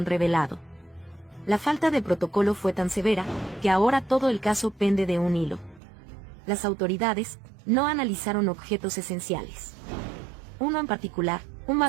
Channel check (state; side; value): drops out; left; at 5.8 s